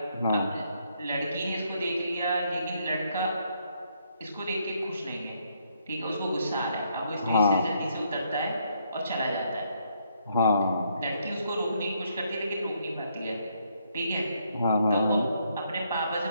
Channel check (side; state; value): both; inverted; correlation -0.72